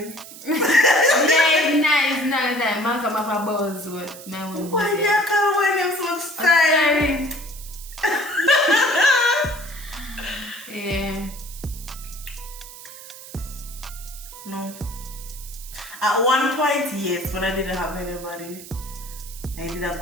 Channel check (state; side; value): noise; right; hiss, 15 dB below the sound